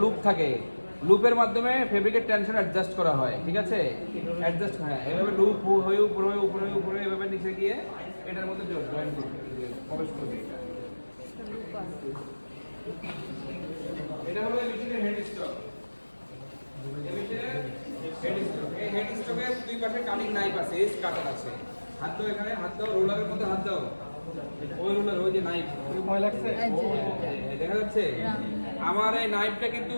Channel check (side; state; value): both; inverted; correlation -1.00